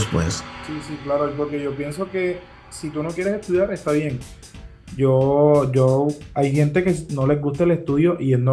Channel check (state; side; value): identical; both; correlation 1.00